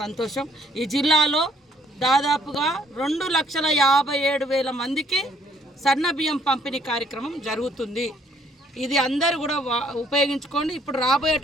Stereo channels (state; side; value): normal; both; correlation 0.64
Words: సంతోషం. ఈ జిల్లాలో దాదాపుగా 2,57,000 మందికి సన్న బియ్యం పంపిణీ కార్యక్రమం జరుగుతుంది. ఇది అందరూ కూడా ఉపయోగించుకోండి. ఇప్పుడు